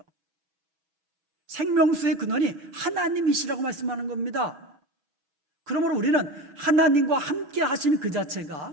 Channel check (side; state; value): left; late; 6.8 ms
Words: 생명수의 근원이 하나님이시라고 말씀하는 겁니다. 그러므로 우리는 하나님과 함께 하신 그